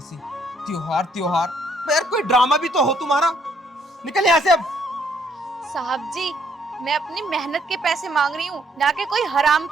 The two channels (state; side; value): normal; both; correlation 0.68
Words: त्योहार त्योहार, यार कोई ड्रामा भी तो हो तुम्हारा। निकल यहाँ से अब। साहब जी, मैं अपनी मेहनत के पैसे मांग रही हूँ, ना कि कोई हराम